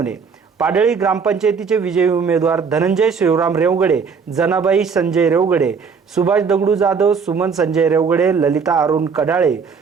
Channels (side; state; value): left; quieter; 5.7 dB